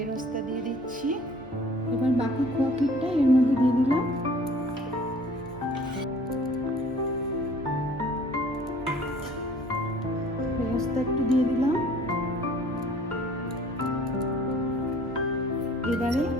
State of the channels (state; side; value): normal; both; correlation 0.52